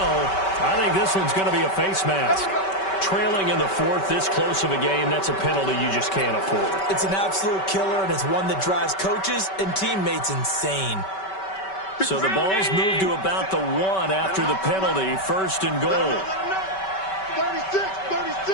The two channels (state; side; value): late; right; 5.2 ms